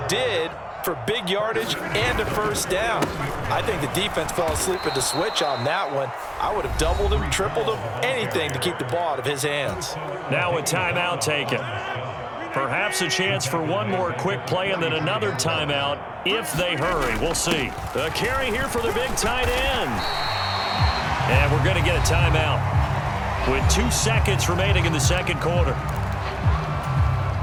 did, for big yardage and a first down. I think the defense fell asleep at the switch on that one. I would have doubled him, tripled him, anything to keep the ball out of his hands. Now a timeout taken. Perhaps a chance for one more quick play and then another timeout if they hurry. We'll see. A carry here for the big tight end. And we're going to get a timeout with 2 seconds remaining in the second quarter.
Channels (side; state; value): both; identical; correlation 1.00